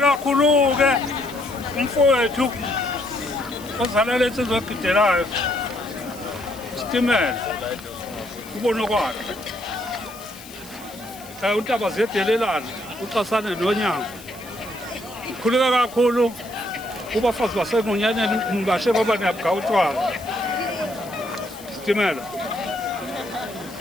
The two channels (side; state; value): left; noise; hiss, 18 dB below the sound